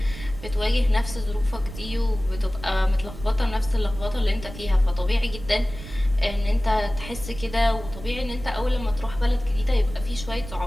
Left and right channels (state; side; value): noise; right; rumble, 13 dB below the sound